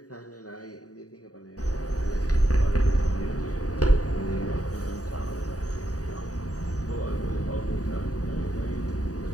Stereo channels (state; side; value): late; right; 0.67 ms